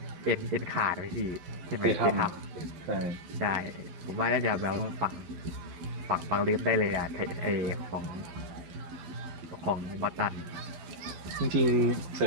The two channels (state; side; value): late; left; 11 ms